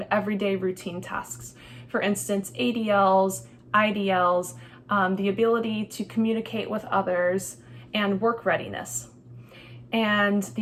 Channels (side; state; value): both; identical; correlation 1.00